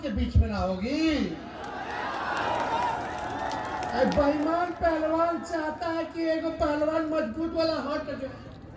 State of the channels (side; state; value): both; identical; correlation 1.00